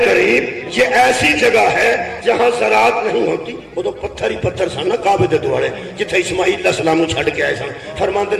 قریب یہ ایسی جگہ ہے جہاں زراعت نہیں ہوتی. وہ تو پتھر ہی پتھر سن نا کعبے دے دوڑے جتھے اسماعیل علیہ السلام نو چھڈ کے آئے سن. فرماندے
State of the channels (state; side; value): identical; both; correlation 1.00